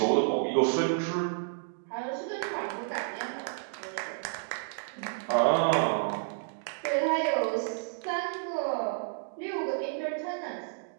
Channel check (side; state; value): left; silent; digital silence